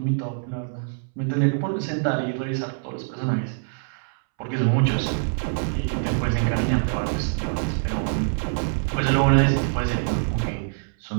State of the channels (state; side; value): silent; left; 62 dB below the other